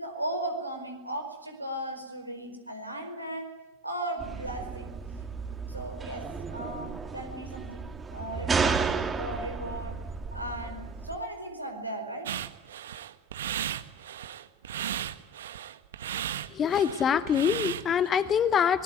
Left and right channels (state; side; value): normal; both; correlation 0.39